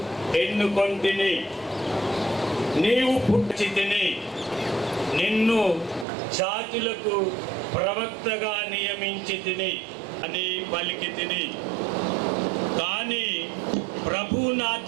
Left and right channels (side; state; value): left; drops out; at 6.1 s